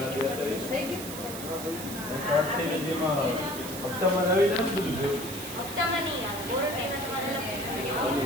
હપ્તામાં નહીં આવે વોરંટીના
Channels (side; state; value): right; noise; hiss, 9 dB below the sound